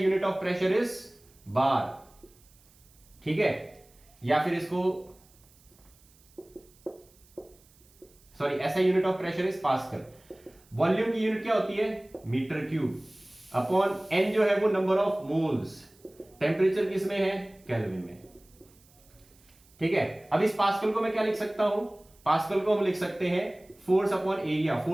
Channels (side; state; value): right; noise; hiss, 29 dB below the sound